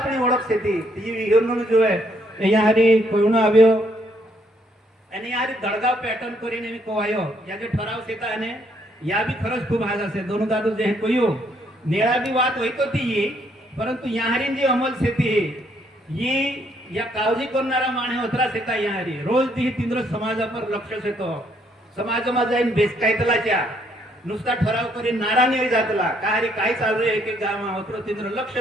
ओळख सेती ती विहरणून जो आहे यारी कोयणो આવ્યો અને यारी दडगाव पॅटर्न કરીને मी कोवायो या जे ठराव सेता અને या भी खरच खूप हाज असे दोन दादू जे कोयो नेळा भी बात होईतो ती परंतु यारी जी अमल सेती ही या काळजी करणारा माणे होतरा सेता यारी रोज ती तिंद्र समाजावर लक्ष सेतो समाजमा जाईन बेसकायतलाच्या नुसता ठराव करी नारा नाही जातला काही काय चालू आहे की गाव होतरो तिंद्र लक्ष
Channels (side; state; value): both; normal; correlation 0.70